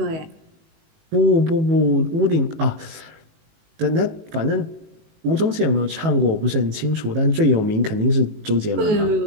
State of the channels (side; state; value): left; late; 19 ms